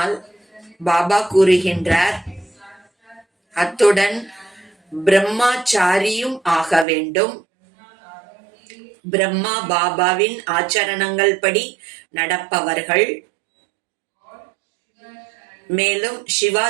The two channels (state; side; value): drops out; left; at 6.9 s